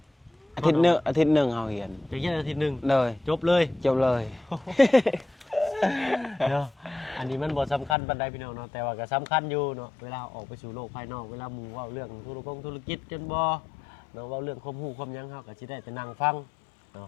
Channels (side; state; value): right; drops out; at 8.0 s